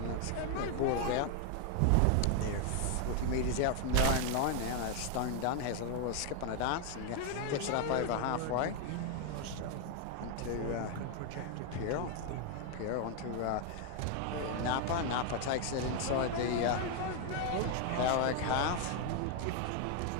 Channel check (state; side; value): different; both; correlation 0.00